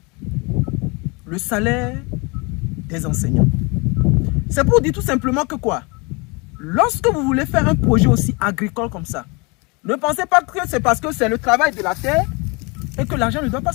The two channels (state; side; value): quieter; right; 28.9 dB